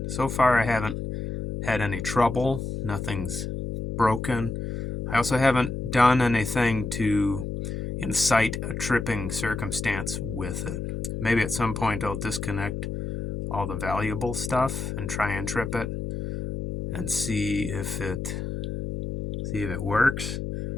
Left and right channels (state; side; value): noise; left; hum, 5 dB below the sound